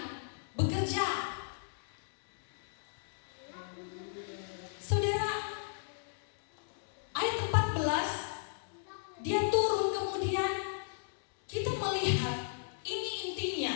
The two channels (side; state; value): right; silent; digital silence